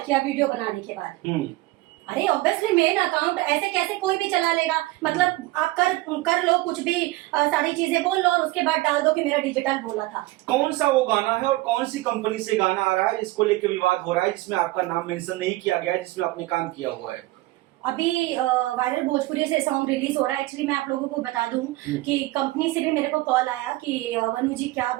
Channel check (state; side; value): quieter; left; 19.3 dB